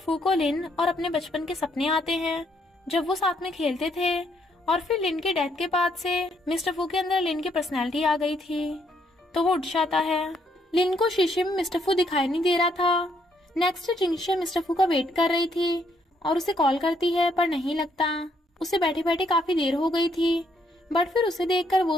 को लिन और अपने बचपन के सपने आते हैं, जब वो साथ में खेलते थे। और फिर लिन के डेथ के बाद से मिस्टर फू के अंदर लिन की पर्सनैलिटी आ गई थी, तो वो उठ जाता है। लिन को शीशे में मिस्टर फू दिखाई नहीं दे रहा था। नेक्स्ट जिंगशे मिस्टर फू का वेट कर रही थी और उसे कॉल करती है, पर नहीं लगता। उसे बैठे बैठे काफी देर हो गई थी, बट फिर उसे देखकर वो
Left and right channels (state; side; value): normal; both; correlation 0.72